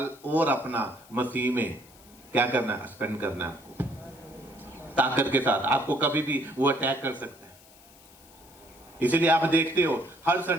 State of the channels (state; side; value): noise; left; hiss, 24 dB below the sound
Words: और अपना मसीह में क्या करना है? स्पेंड करना है आपको ताकत के साथ। आपको कभी भी वो अटैक कर सकता है। इसीलिए आप देखते हो हर